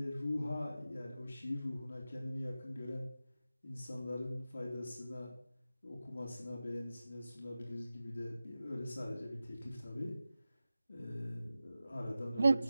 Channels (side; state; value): both; inverted; correlation -0.94